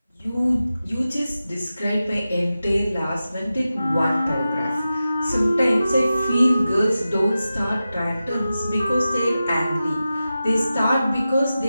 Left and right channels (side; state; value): both; inverted; correlation -0.93